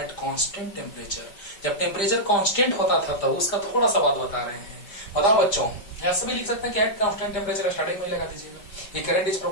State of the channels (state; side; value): late; right; 5.1 ms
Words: constant temperature। जब temperature constant होता था तब उसका थोड़ा सा बात बता रहे हैं। बताओ बच्चों, ऐसे भी लिख सकते हैं कि एट कांस्टेंट टेम्परेचर, स्टार्टिंग में लगा दीजिएगा, ये current is